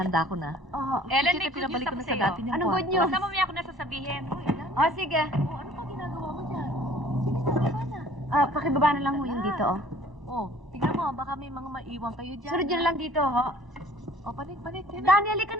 ko na. Oo. Ellen, may good news ako sa'yo. Anong good news? Basta mamaya ako na sasabihin. Oh, sige. Ano pa ginagawa mo dyan? Pakibaba na lang ho yung dito, oh. Oh, tingnan mo, baka may mga maiwan kayo dyan. Sunod yun lang dito, ho. Oh, panik. Dani, halika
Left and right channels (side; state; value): both; normal; correlation 0.51